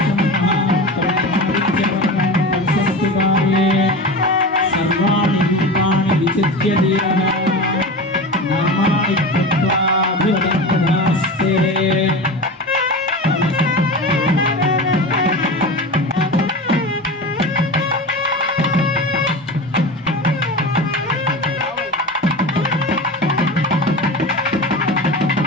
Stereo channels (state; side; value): normal; both; correlation 0.28